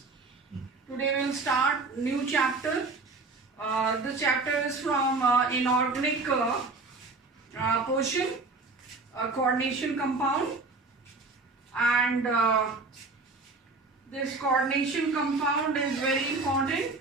Today we will start new chapter. This chapter is from inorganic portion, coordination compound, and this coordination compound is very important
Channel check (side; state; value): left; quieter; 3.7 dB